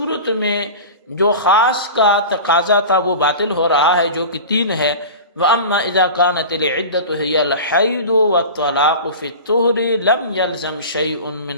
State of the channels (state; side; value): inverted; both; correlation -0.33